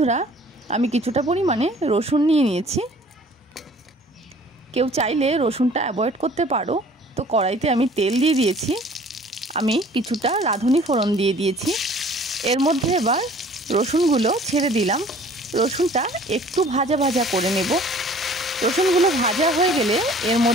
আমি কিছুটা পরিমাণে রসুন নিয়ে নিয়েছি। কেউ চাইলে রসুনটা অ্যাভয়েড করতে পারো। তো কড়াইতে আমি তেল দিয়ে দিয়েছি। আমি কিছুটা রাঁধুনি ফোড়ন দিয়ে দিয়েছি। এর মধ্যে এবার রসুনগুলো ছেড়ে দিলাম। রসুনটা একটু ভাজা ভাজা করে নেব। রসুনগুলো ভাজা হয়ে গেলে এর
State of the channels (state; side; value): normal; both; correlation 0.51